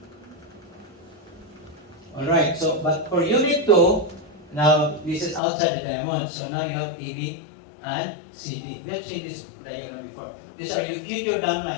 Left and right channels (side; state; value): right; drops out; at 5.4 s